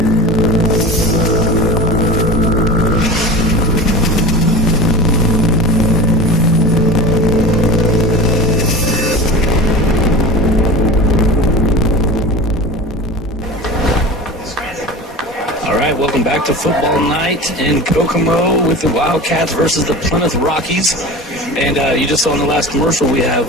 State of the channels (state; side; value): normal; both; correlation 0.34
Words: Welcome back to football night in Kokomo with the Wildkats versus the Plymouth Rockies. And you just saw in the last commercial, we